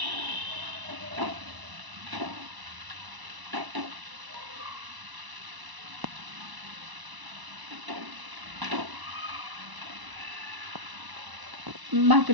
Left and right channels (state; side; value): late; left; 1.0 ms